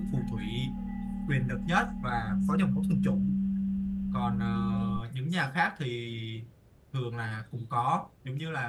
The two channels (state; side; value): identical; both; correlation 1.00